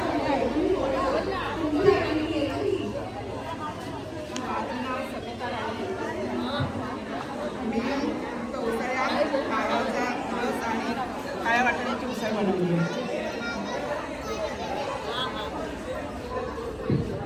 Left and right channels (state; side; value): identical; both; correlation 1.00